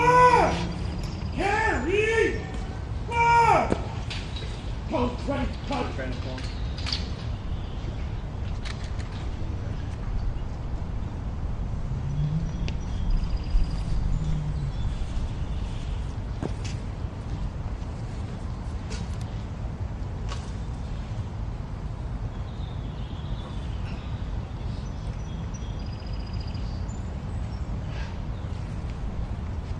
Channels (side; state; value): both; identical; correlation 1.00